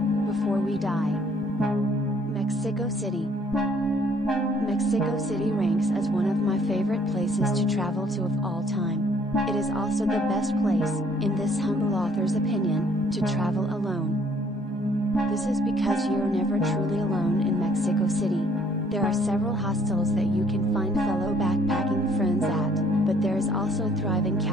before we die. Mexico City. Mexico City ranks as one of my favorite places to travel to of all time. It is also the best place, in this humble author's opinion, to travel alone. This is because you're never truly alone in Mexico City. There are several hostels that you can find fellow backpacking friends at, but there is also a thriving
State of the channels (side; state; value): both; normal; correlation 0.62